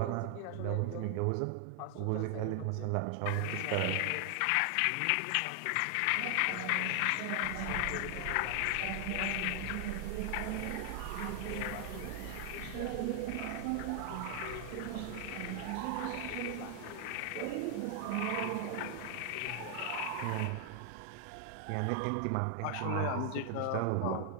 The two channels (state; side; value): different; both; correlation 0.00